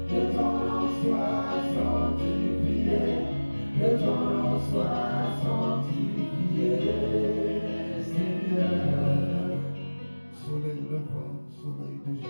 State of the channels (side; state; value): both; inverted; correlation -1.00